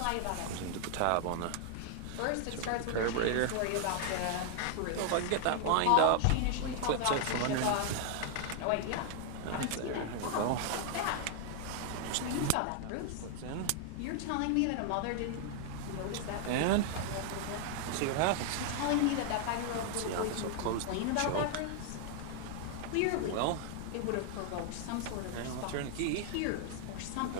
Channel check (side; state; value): both; different; correlation 0.00